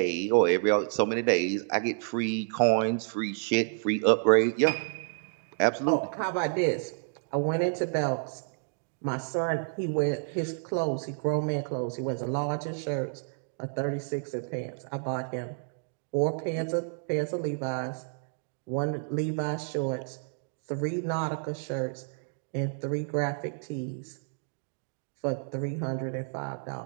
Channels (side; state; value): left; silent; digital silence